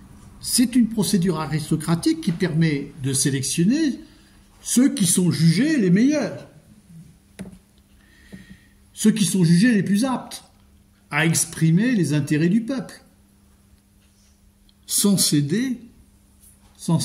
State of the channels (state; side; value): identical; both; correlation 1.00